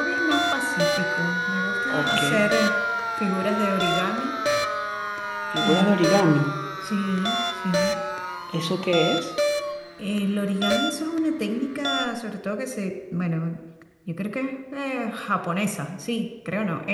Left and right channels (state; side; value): identical; both; correlation 1.00